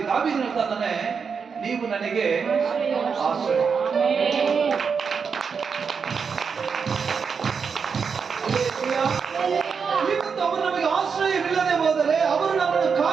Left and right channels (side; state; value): left; quieter; 5.9 dB